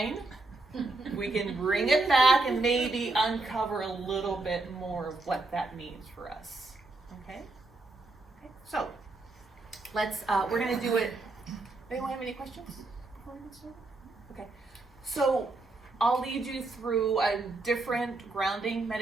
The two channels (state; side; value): quieter; left; 3.1 dB